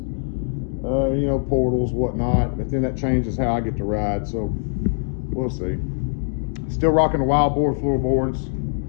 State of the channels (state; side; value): silent; right; 64 dB below the other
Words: know, portals, whatnot, but then that changes how I get to ride, so we'll see. Still rocking the wild board floorboards.